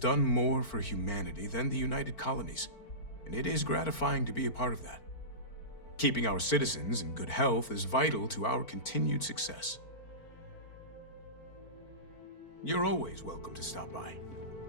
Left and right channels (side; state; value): right; late; 4.4 ms